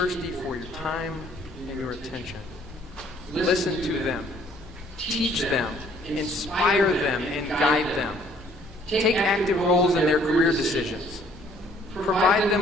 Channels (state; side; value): normal; both; correlation 0.61